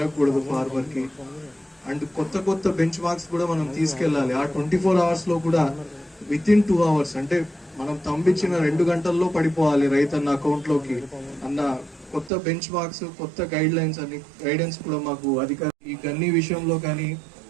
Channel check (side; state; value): left; drops out; at 12.3 s